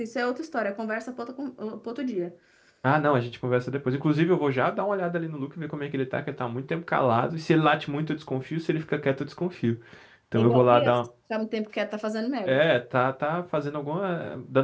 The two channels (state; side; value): identical; both; correlation 1.00